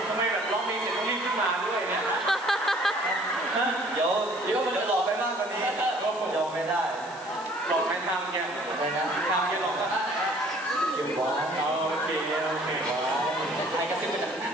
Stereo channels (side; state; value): left; noise; hiss, 19 dB below the sound